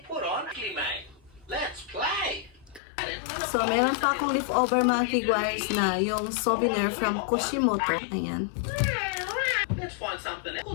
put on mate. Let's play. So, meron pa akong leftover mga kigwahers na yung souvenir from Kushimoto. Ayan. Let's find something else,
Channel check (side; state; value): right; drops out; at 2.8 s